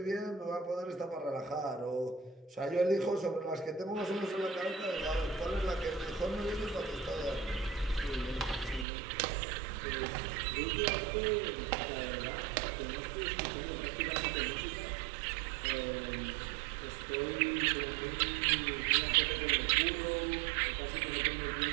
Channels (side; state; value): left; drops out; at 8.8 s